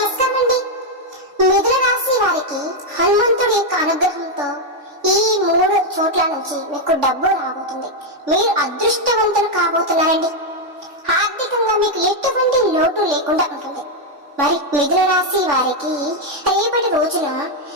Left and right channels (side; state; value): left; late; 3.5 ms